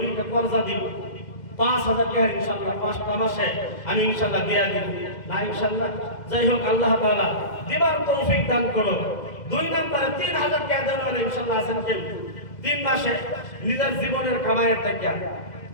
কর্জা দিব, 5000 টাকা ইনশাআল্লাহ 5টা মাসে আমি ইনশাআল্লাহ দিয়া দিব না ইনশাআল্লাহ। যাই হোক, আল্লাহ তাআলা দিবার তৌফিক দান করুন। 2 নম্বরে 3000 টাকা দেওয়ার ইনশাআল্লাহ আছেন কেউ 3 মাসে নিজের জীবনের কামাইয়ের টাকা,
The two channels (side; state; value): right; late; 2.0 ms